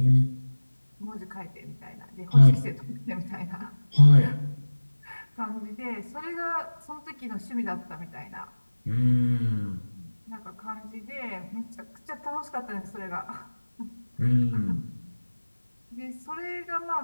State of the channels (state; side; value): inverted; both; correlation -1.00